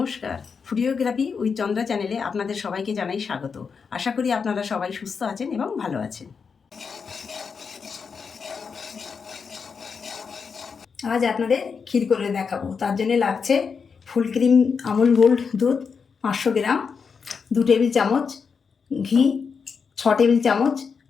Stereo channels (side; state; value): right; quieter; 5.8 dB